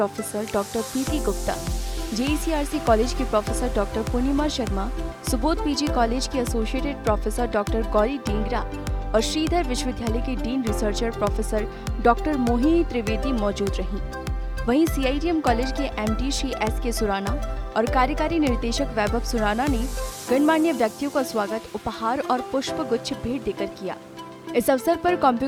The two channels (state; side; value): identical; both; correlation 1.00